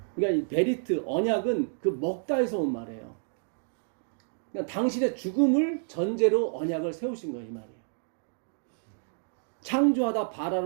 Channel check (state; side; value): silent; left; digital silence